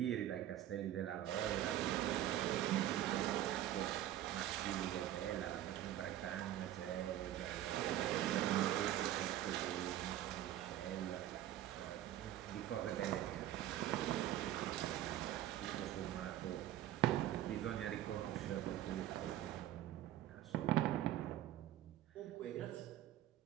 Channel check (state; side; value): quieter; left; 12.8 dB